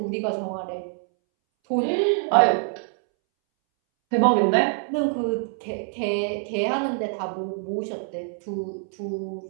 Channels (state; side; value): silent; left; 61 dB below the other